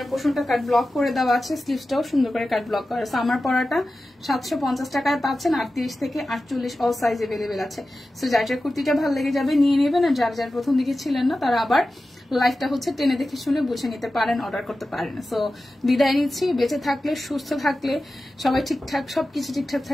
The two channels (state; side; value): normal; both; correlation 0.94